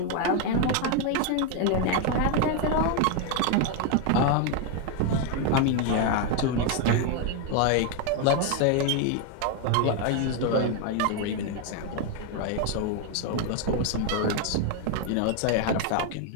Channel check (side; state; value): both; different; correlation 0.01